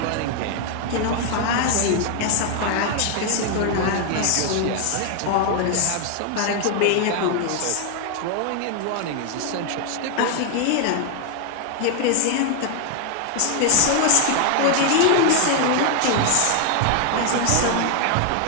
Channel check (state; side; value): different; both; correlation 0.00